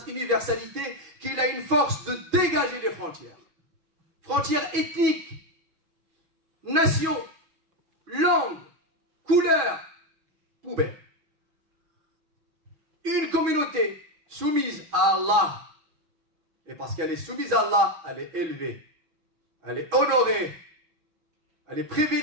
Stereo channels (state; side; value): late; left; 6.2 ms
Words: universalité qu'il a une force de dégager les frontières. Frontières ethniques, nations, langues, couleurs, poubelles. Une communauté soumise à Allah. Et parce qu'elle est soumise à Allah, elle est élevée, elle est honorée, elle est